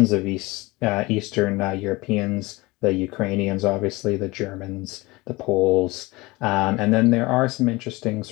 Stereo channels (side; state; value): right; quieter; 22.3 dB